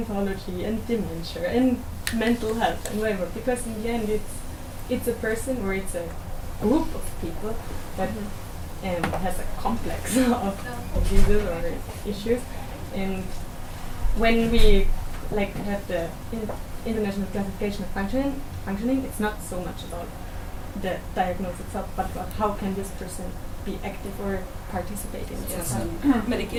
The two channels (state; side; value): identical; both; correlation 1.00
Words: and dementia and mental health and whatever, because in the end it's a person or it's a group of people that has a complex of diseases or issues. And when we like have the international classification of functioning, it's not so much about the diagnosis itself, but about how can this person be active or participate in society.